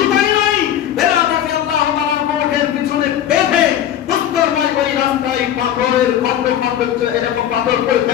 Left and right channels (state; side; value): quieter; right; 10.7 dB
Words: তাই নয়, বেলাল রাদিয়াল্লাহু তাআলার কোমরের পিছনে বেঁধে উত্তরময় ওই রাস্তায় পাথরের খন্ড খন্ড এরকম পাথর পড়ে